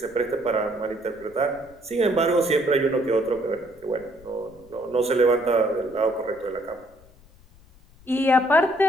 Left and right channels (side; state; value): left; noise; rumble, 26 dB below the sound